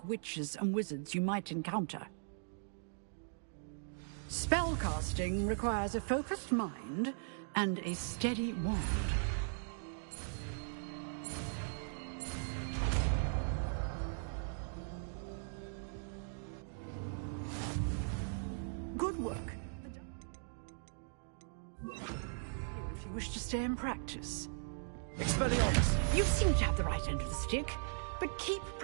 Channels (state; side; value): silent; left; digital silence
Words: witches and wizards you might encounter. Spellcasting requires a focused mind and a steady wand. Good work. If you wish to stay and practice. Expelliarmus! You seem to have the right end of the stick, but keep